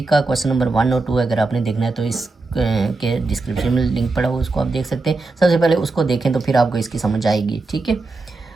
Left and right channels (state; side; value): quieter; left; 3.5 dB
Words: का क्वेश्चन नंबर 1 और 2 अगर आपने देखना है तो इस के डिस्क्रिप्शन में लिंक पड़ा हुआ उसको आप देख सकते हैं। सबसे पहले उसको देखें तो फिर आपको इसकी समझ आएगी, ठीक है।